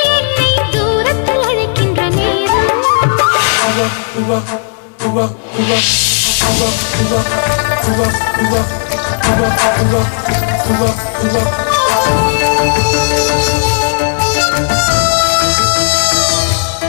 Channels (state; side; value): silent; right; 69 dB below the other